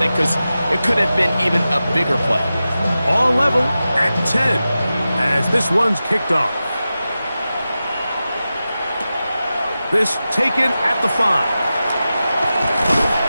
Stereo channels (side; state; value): both; inverted; correlation -0.93